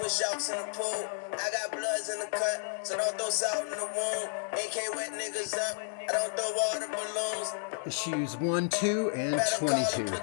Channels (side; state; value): right; silent; digital silence